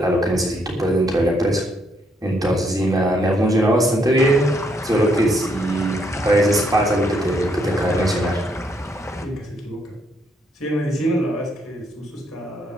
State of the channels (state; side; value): normal; both; correlation 0.73